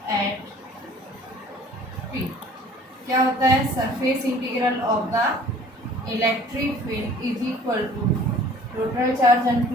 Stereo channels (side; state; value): both; normal; correlation 0.50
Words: at P, क्या होता है, surface integral of the electric field is equal to total charge